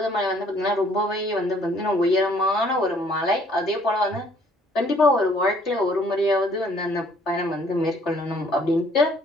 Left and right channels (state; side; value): normal; both; correlation 0.61